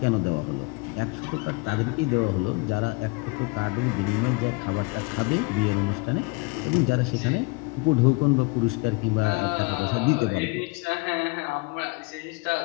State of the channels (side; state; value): right; quieter; 27.3 dB